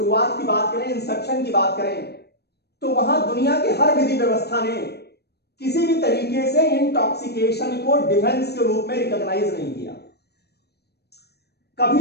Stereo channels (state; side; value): late; right; 0.47 ms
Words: की बात करें, इंसेप्शन की बात करें, तो वहां दुनिया के हर विधि व्यवस्था ने किसी भी तरीके से इंटॉक्सिकेशन को डिफेंस के रूप में रिकॉग्नाइज नहीं किया।